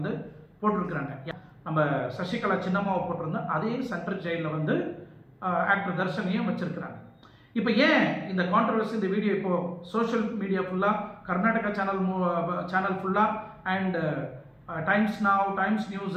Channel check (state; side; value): identical; both; correlation 1.00